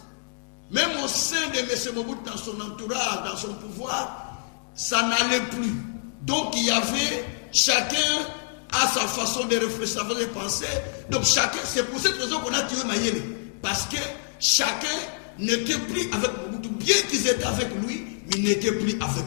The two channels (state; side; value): silent; right; digital silence